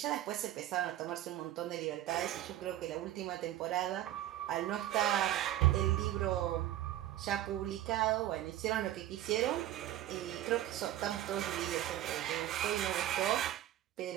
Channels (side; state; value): left; quieter; 13.4 dB